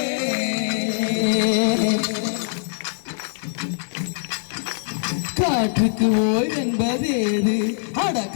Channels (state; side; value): silent; right; 56 dB below the other